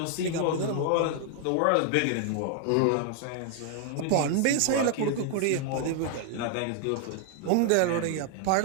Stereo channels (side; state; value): both; different; correlation 0.00